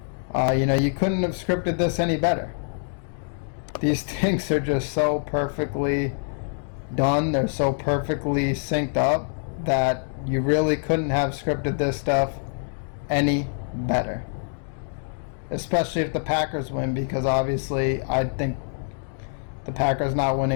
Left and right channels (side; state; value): right; silent; digital silence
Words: You couldn't have scripted this any better. These things are just so perfectly done. They're so perfectly synced up that you really couldn't have scripted this stuff any better. Especially if the Packers win, because obviously I think the Packers not